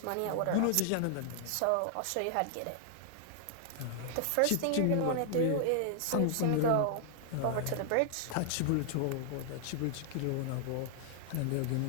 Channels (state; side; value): different; both; correlation -0.01